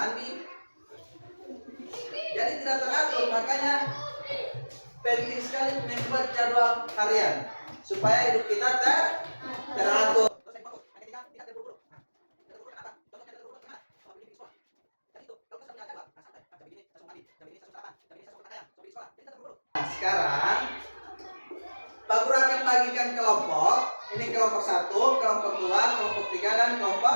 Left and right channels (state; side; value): inverted; both; correlation -1.00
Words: Jadi tidak teratur. Makanya penting sekali membuat jadwal harian supaya hidup kita teratur. Nah, sekarang Pak Guru akan bagikan kelompok. Ini kelompok 1, kelompok 2, kelompok 3 dan